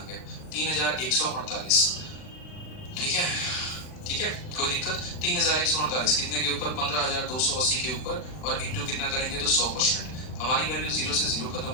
गया, 3,148। ठीक है, ठीक है, कोई दिक्कत। 3,148 कितने के ऊपर, 15,280 के ऊपर, और इंटू कितना करेंगे तो 100%। हमारी वैल्यू 0 से 0 खत्म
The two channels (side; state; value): right; late; 39 ms